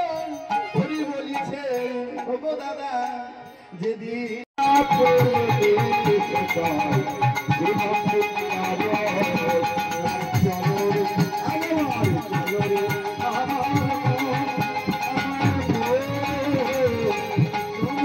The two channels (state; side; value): identical; both; correlation 1.00